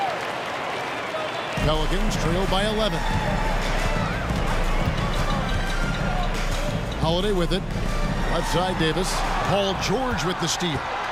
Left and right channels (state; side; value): identical; both; correlation 1.00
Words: Pelicans trail by 11. Holiday with it. Left side, Davis. Paul George with the steal.